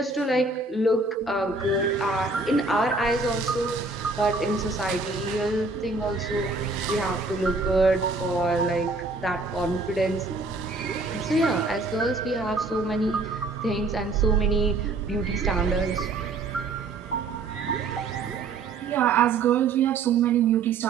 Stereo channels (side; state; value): left; quieter; 3.8 dB